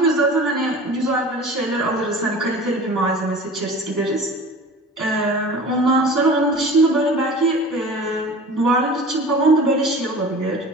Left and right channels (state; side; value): normal; both; correlation 0.39